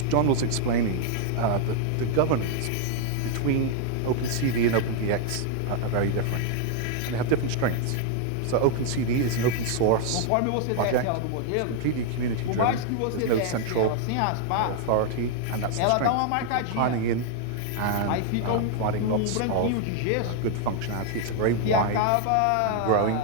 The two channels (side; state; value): both; different; correlation 0.00